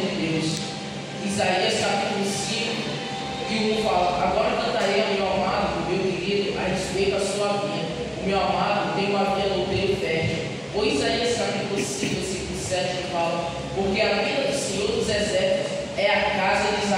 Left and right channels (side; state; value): both; identical; correlation 1.00